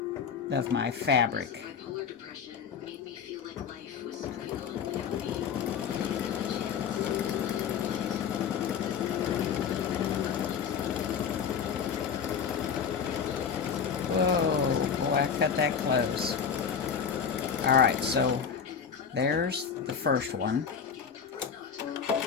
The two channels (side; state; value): right; quieter; 6.9 dB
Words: of my fabric. Whoa, boy, I cut that close. Alright, so there's the first one.